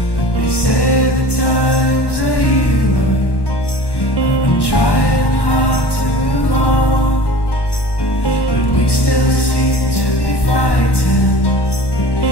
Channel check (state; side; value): late; right; 1.1 ms